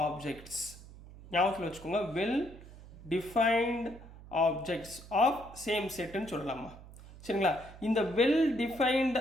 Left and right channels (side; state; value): right; noise; hum, 18 dB below the sound